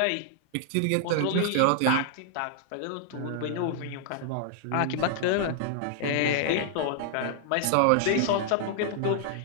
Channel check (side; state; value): both; different; correlation 0.00